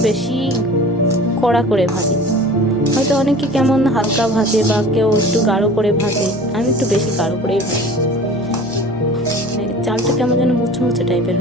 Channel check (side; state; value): left; noise; hum, 22 dB below the sound